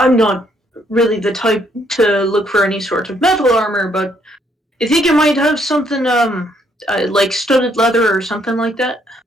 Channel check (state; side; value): normal; both; correlation 0.70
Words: not really the type to look for any sort of metal armor, but you think it might have something like studded leather or something like that?